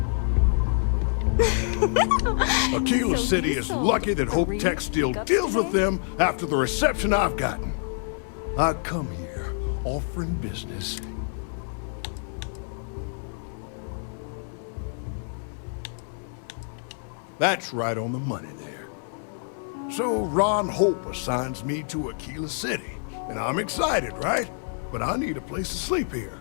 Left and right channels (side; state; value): right; silent; digital silence